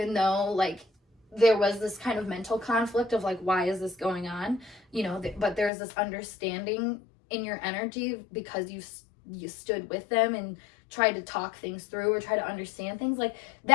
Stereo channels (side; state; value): right; drops out; at 5.7 s